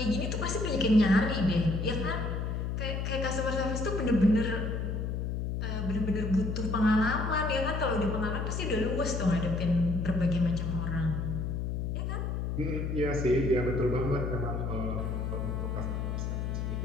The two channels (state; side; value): noise; left; hum, 2 dB below the sound